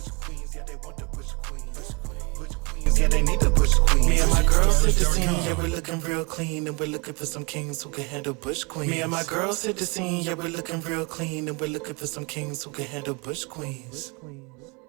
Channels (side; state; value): left; quieter; 30.0 dB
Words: Yeah, they need to push queen. Me and my girls hit the scene, yeah, we're looking real clean, and we're looking for some kings who can handle bush queens. Me and my girls hit the scene, yeah, we're looking real clean, and we're looking for some kings who can handle bush queens.